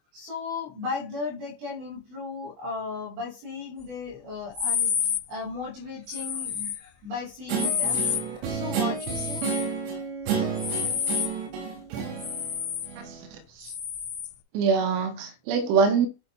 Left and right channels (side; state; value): left; late; 24 ms